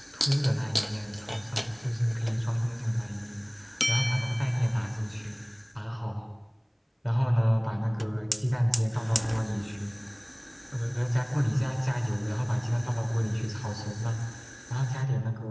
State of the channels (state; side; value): identical; both; correlation 1.00